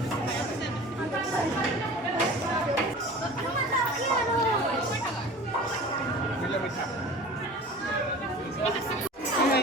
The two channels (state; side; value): normal; both; correlation 0.40